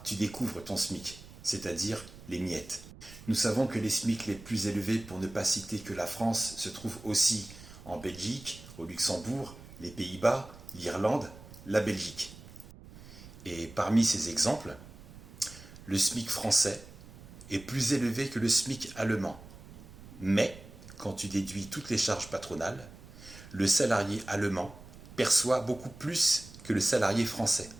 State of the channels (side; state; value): right; noise; rumble, 18 dB below the sound